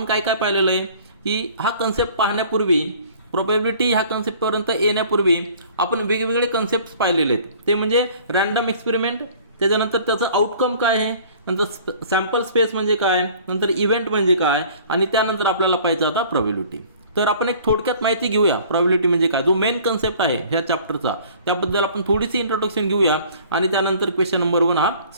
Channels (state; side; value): inverted; both; correlation -0.51